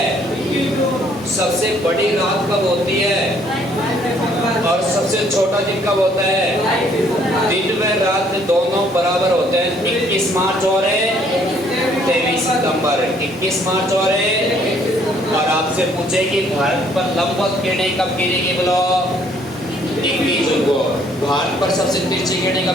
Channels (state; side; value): normal; both; correlation 0.64